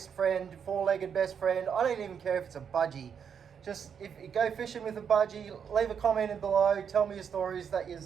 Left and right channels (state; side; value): quieter; left; 7.4 dB